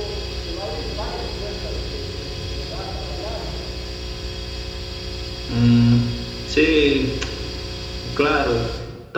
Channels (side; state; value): both; identical; correlation 1.00